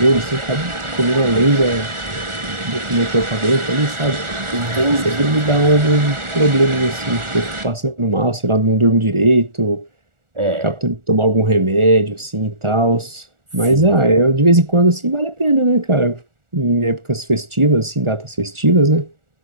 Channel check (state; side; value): late; left; 1.4 ms